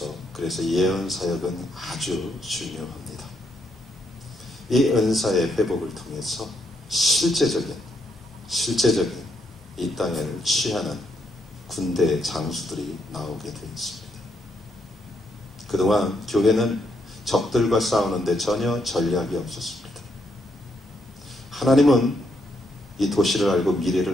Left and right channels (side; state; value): both; normal; correlation 0.77